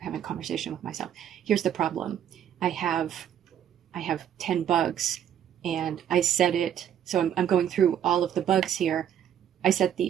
a conversation with myself. Here's the problem. I have 10 bugs and I set it, so I'm going through all of the bugs here. I set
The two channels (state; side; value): quieter; left; 9.8 dB